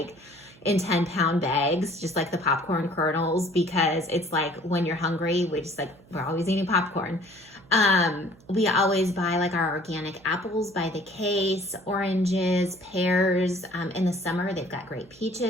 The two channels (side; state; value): right; noise; hum, 26 dB below the sound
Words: in 10-pound bags, just like the popcorn kernels, because it's like when you're hungry, we're always eating popcorn. We always buy like our organic apples by the case, oranges, pears. In the summer, they've got great